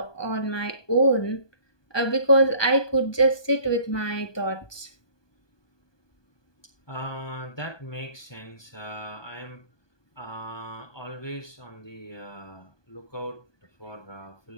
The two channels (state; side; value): late; right; 1.2 ms